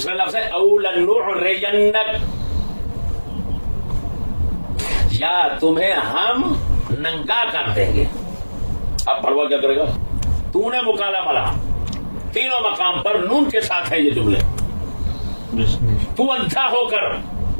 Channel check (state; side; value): inverted; both; correlation -1.00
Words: لفظ ہے او لنعرینک، یا تمہیں ہم ننگا کر دیں گے. اب بڑوا کیا کرے گا؟ تو نے مکالہ ملا. تینوں مقام پر نون کے ساتھ ہے یہ جملے. تو اندھا ہو کر